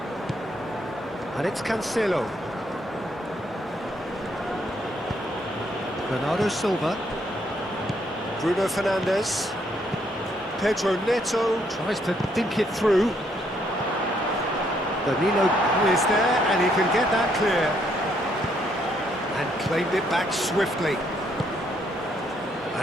And it's Cancelo. Bernardo Silva. Bruno Fernandes. Pedro Neto tries to dink it through. Danilo is there and he can get that clear. And claimed it back swiftly.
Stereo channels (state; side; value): normal; both; correlation 0.71